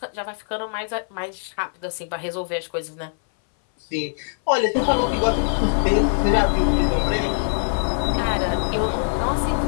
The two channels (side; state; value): right; silent; 60 dB below the other